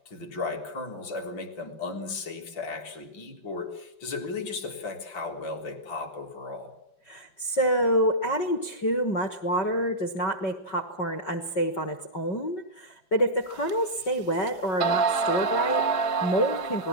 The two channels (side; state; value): right; late; 5.2 ms